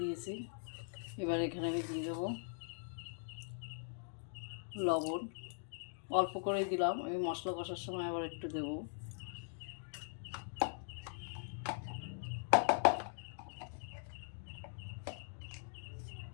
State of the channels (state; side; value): silent; right; digital silence